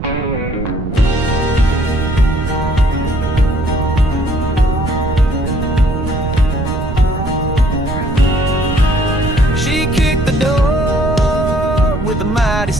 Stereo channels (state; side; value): noise; right; rumble, 6 dB below the sound